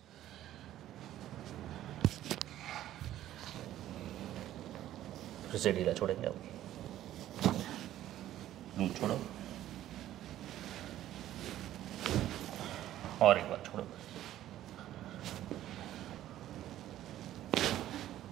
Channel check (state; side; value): quieter; left; 13.1 dB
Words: फिर से ढीला छोड़ेंगे अब. लूज छोड़ो. और एक बार छोड़ो.